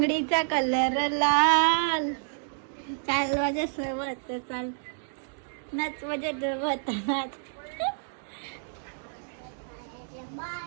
कलर लाल. चाल माझ्या सोबत चाल नाच माझ्या सोबत नाच.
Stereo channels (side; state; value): left; silent; digital silence